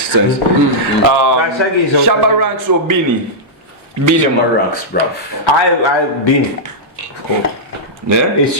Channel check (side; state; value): both; normal; correlation -0.09